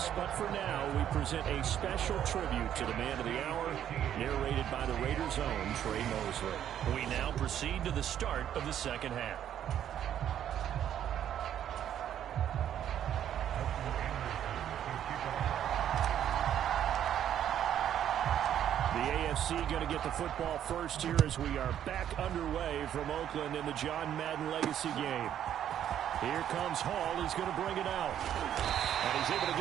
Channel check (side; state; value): left; quieter; 10.3 dB